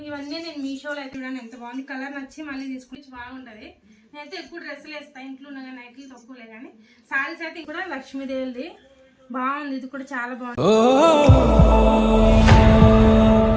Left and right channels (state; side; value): identical; both; correlation 1.00